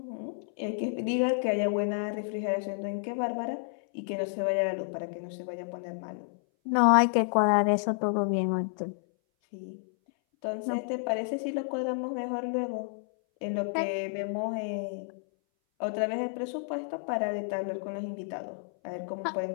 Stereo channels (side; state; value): right; silent; 58 dB below the other